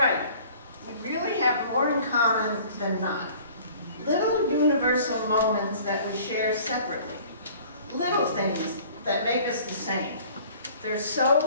We really have more in common than not. Little universal moments that we share separately. Little things that make us the same. They're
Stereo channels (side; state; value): both; inverted; correlation -0.50